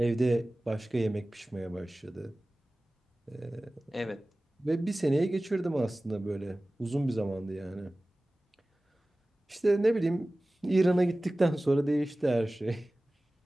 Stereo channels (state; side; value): normal; both; correlation 0.97